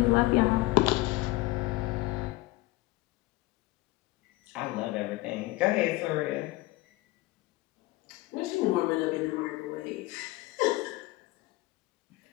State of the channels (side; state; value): right; quieter; 19.8 dB